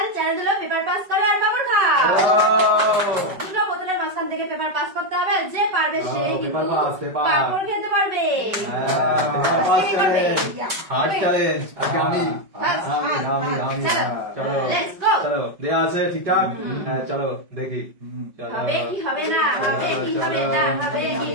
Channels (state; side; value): late; left; 5.3 ms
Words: চ্যালেঞ্জ হলো পেপার পাস করো আর পাপড় খাও। দুটো বোতলের মাঝখান থেকে পেপার পাস করতে হবে, যে পারবে সে কিন্তু পাপড় খেতে পারবে। হার্ড চ্যালেঞ্জ আজকে আমি চলো লেটস গো। চলো দেয়া আছে ঠিকঠাক। হ্যাঁ চলো দেখি হবে কি হবে না, হবে কি হবে না, হবে কি